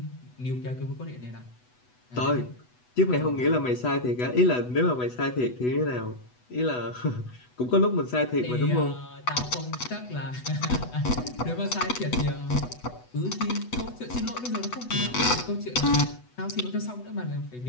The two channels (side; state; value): right; late; 8.1 ms